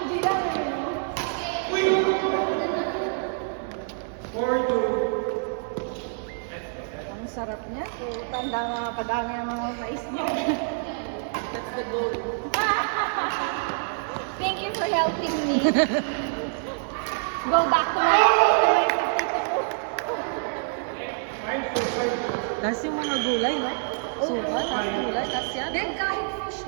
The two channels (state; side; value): silent; left; digital silence